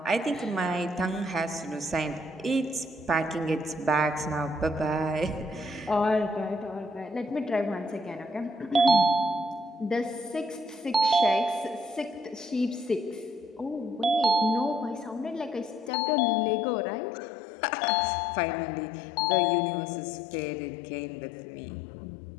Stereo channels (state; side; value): drops out; right; at 15.9 s